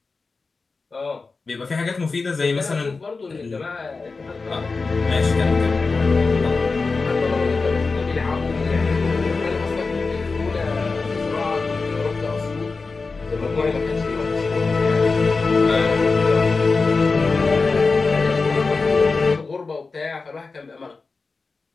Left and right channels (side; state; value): right; quieter; 4.1 dB